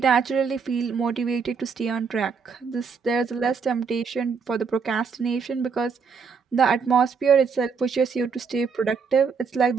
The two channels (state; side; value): quieter; left; 5.6 dB